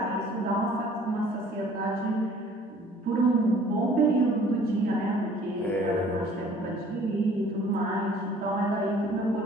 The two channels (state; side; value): normal; both; correlation 0.54